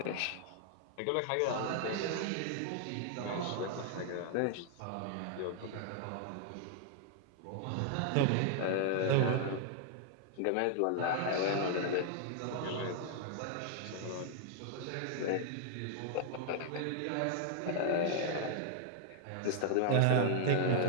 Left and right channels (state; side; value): different; both; correlation -0.01